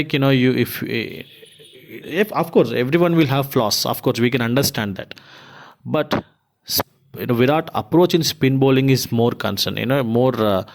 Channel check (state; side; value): identical; both; correlation 1.00